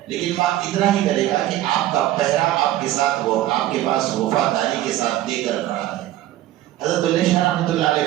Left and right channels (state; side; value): quieter; left; 14.2 dB